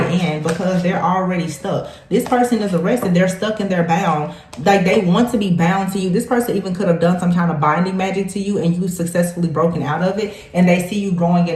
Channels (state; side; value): identical; both; correlation 1.00